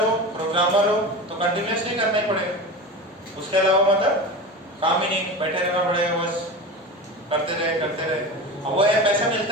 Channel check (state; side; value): normal; both; correlation 0.28